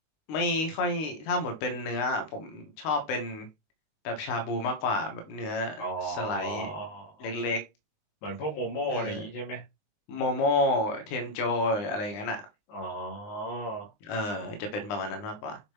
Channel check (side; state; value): right; late; 20 ms